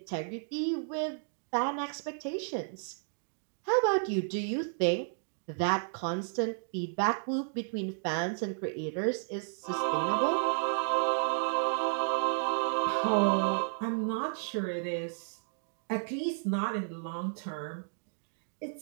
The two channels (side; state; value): left; silent; digital silence